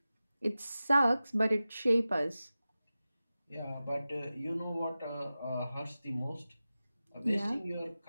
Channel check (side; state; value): both; inverted; correlation -0.95